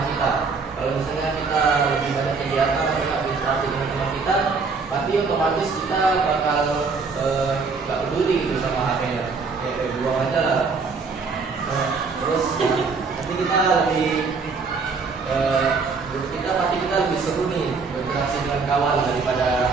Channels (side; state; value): left; quieter; 4.7 dB